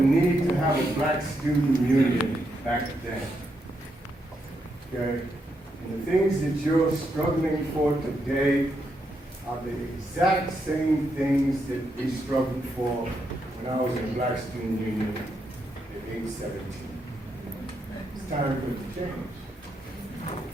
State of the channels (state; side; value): normal; both; correlation 0.81